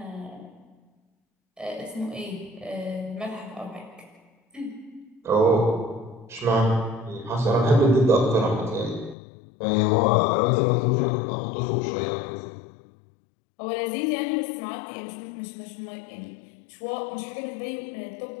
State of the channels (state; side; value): drops out; right; at 9.2 s